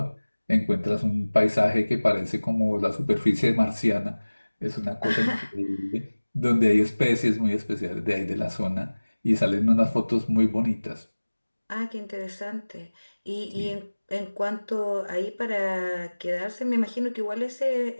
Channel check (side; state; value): both; inverted; correlation -1.00